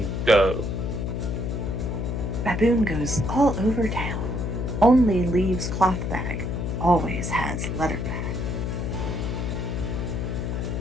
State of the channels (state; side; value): noise; left; hum, 2 dB below the sound